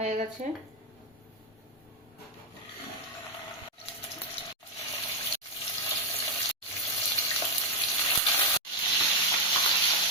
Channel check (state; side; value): normal; both; correlation 0.04